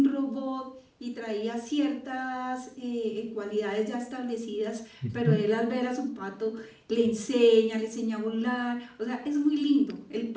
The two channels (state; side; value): identical; both; correlation 1.00